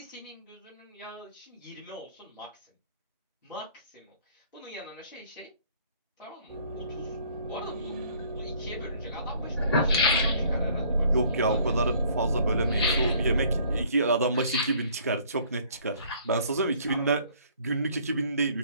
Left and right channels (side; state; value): both; inverted; correlation -0.58